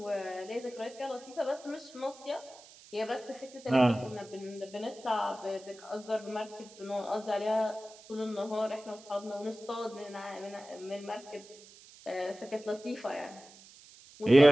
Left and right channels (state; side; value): noise; right; hiss, 21 dB below the sound